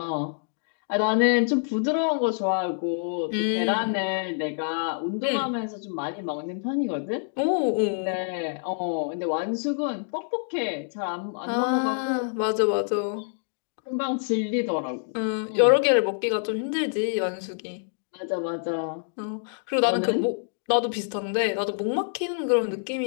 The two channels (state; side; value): silent; right; digital silence